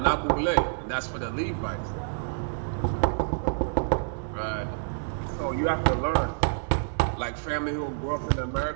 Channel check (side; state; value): left; silent; digital silence